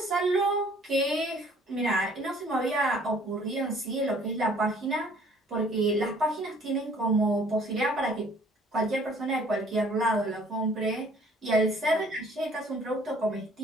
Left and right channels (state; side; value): normal; both; correlation 0.57